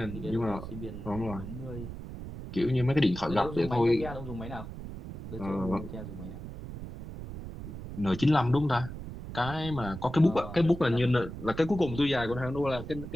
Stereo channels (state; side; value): noise; right; rumble, 10 dB below the sound